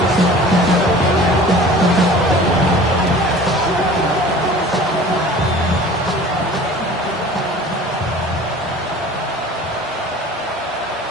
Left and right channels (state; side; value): normal; both; correlation 0.44